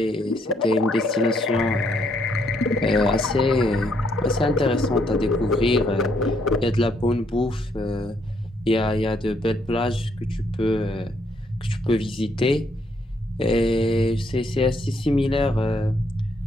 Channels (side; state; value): both; normal; correlation 0.72